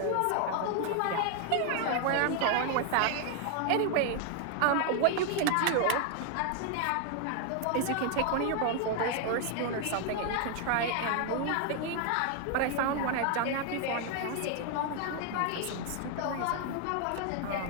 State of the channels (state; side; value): different; both; correlation 0.00